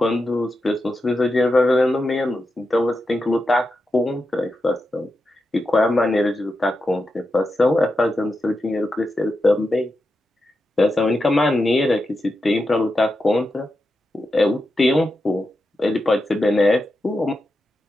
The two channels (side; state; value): both; normal; correlation 0.88